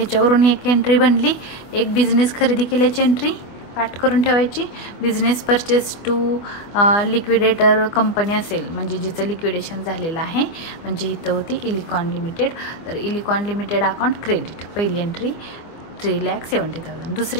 एक एंट्री बनली. एक बिझनेस खरेदी केल्याची एंट्री पाठ करून ठेवायची. Business purchase to liquidator company असेल म्हणजे जिचं लिक्विडेशन झालेलं आहे, म्हणजे इथं होती इलिकॉन लिमिटेड. तर इलिकॉन लिमिटेड अकाउंट क्रेडिट, पहिली एंट्री 3,70,000.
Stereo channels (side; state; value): right; late; 25 ms